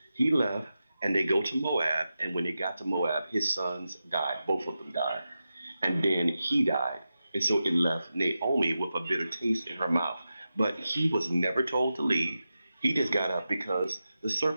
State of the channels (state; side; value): inverted; both; correlation -0.91